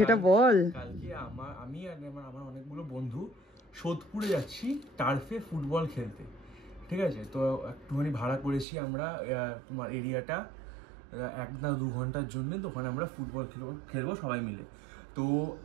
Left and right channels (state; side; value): drops out; left; at 8.7 s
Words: বল। কালকে আমি আর আমার অনেকগুলো বন্ধু সোদপুরে যাচ্ছি টার্ফে ফুটবল খেলতে, ঠিক আছে। তো একটুখানি ভাড়া করেছি আমরা তোমার এরিয়াটা 1 না 2 ঘন্টার জন্য। তো ওখানে আমরা ফুটবল খেলবো সবাই মিলে। তো